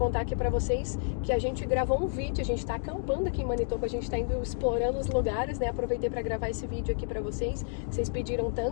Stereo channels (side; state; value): right; silent; digital silence